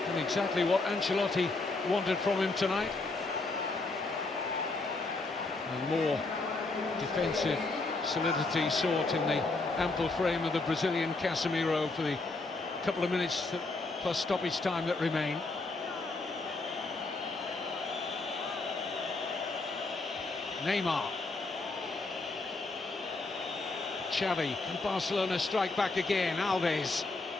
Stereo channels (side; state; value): right; quieter; 3.4 dB